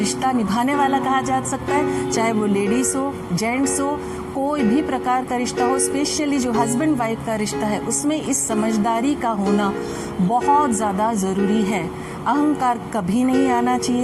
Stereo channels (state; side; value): identical; both; correlation 1.00